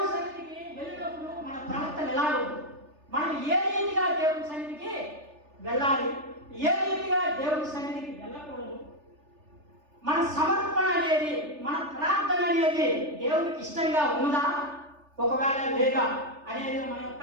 సన్నిధికి వెళ్ళినప్పుడు మన ప్రవర్తన ఎలా ఉంది, మనం ఏ రీతిగా దేవుని సన్నిధికి వెళ్ళాలి, ఏ రీతిగా దేవుని సన్నిధికి వెళ్ళకూడదు, మన సమర్పణ అనేది మన ప్రార్థన అనేది దేవునికి ఇష్టంగా ఉన్నదా ఒకవేళ లేదా అనేది మన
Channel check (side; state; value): left; late; 3.4 ms